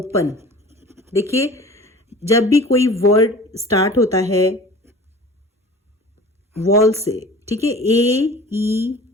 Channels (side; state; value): both; normal; correlation 0.41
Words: देखिए, जब भी कोई वर्ड स्टार्ट होता है वॉल से, ठीक है,